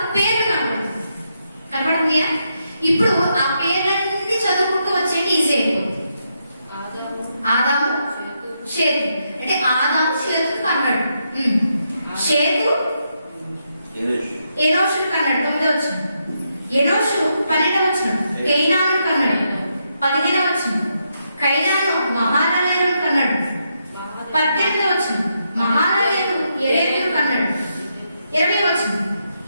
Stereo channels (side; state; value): both; inverted; correlation -0.81